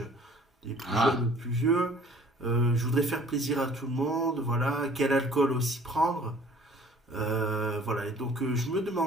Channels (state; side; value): normal; both; correlation 0.52